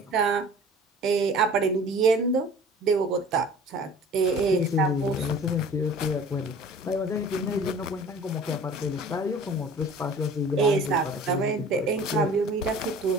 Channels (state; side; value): normal; both; correlation 0.45